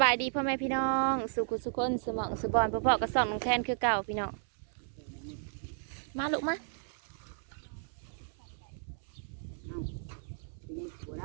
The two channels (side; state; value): left; silent; 55 dB below the other